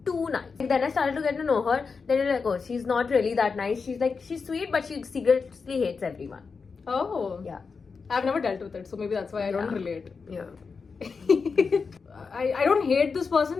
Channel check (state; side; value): quieter; right; 5.0 dB